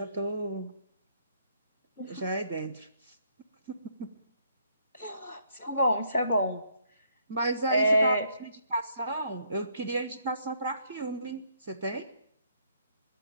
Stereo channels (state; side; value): inverted; both; correlation -0.70